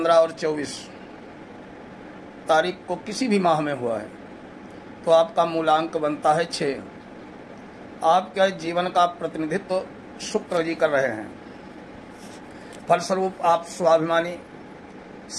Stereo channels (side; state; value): both; identical; correlation 1.00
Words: और 24 तारीख को किसी भी माह में हुआ है तो आपका मूलांक बनता है 6। आपके जीवन का प्रतिनिधित्व शुक्र जी कर रहे हैं। फलस्वरूप आप स्वाभिमानी,